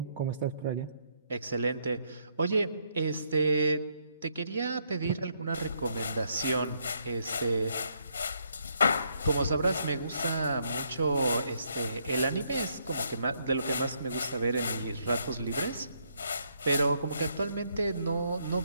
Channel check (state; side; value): inverted; both; correlation -0.73